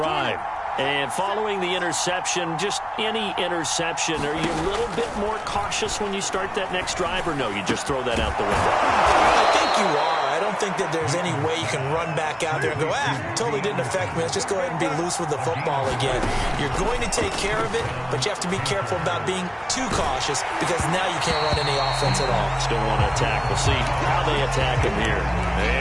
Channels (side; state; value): both; identical; correlation 1.00